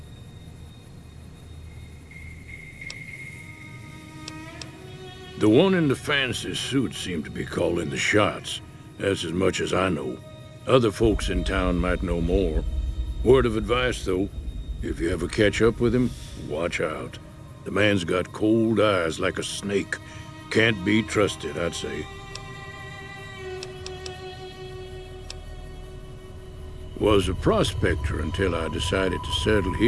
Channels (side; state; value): both; identical; correlation 1.00